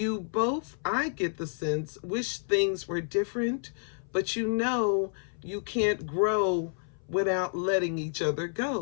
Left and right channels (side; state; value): right; silent; 56 dB below the other